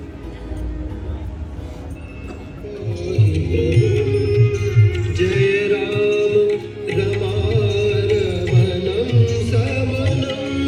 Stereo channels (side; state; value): both; identical; correlation 1.00